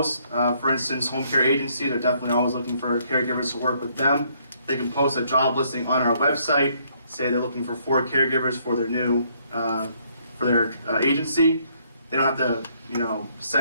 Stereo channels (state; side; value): inverted; both; correlation -0.68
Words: For instance, home care agencies are definitely always looking for caregivers to work with them. They can post a job listing on our website, say they're looking for 4 caregivers for their agency. They don't have to,